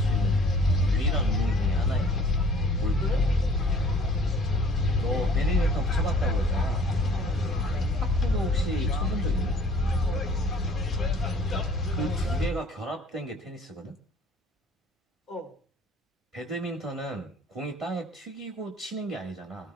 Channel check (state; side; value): normal; both; correlation 0.53